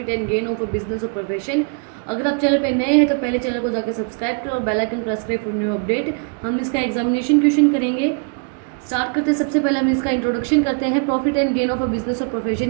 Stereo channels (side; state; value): left; quieter; 38.9 dB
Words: and gain of a business और प्रोफेशन। अगर आप चैनल पे नए हैं तो पहले चैनल को जाकर सब्सक्राइब करो और बेल आइकन प्रेस करें फॉर न्यू अपडेट। हम इसका एग्जामिनेशन क्वेश्चन करेंगे। स्टार्ट करते हैं। सबसे पहले हम इसका इंट्रोडक्शन करते हैं। Profit and gain of a business और